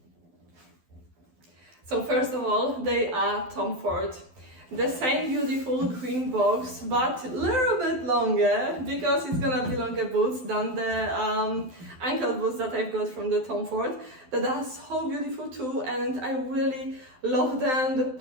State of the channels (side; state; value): left; late; 12 ms